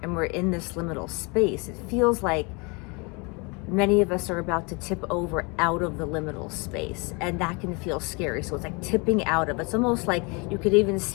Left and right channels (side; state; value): right; quieter; 30.0 dB